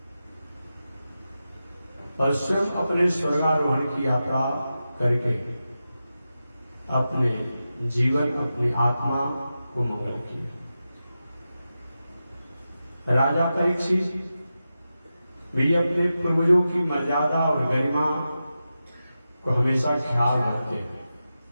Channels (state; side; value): inverted; both; correlation -0.92